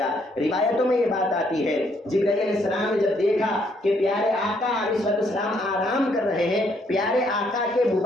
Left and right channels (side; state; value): both; normal; correlation 0.70